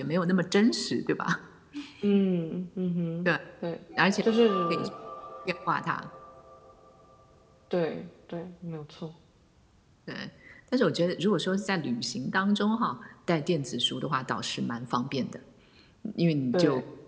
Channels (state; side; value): identical; both; correlation 1.00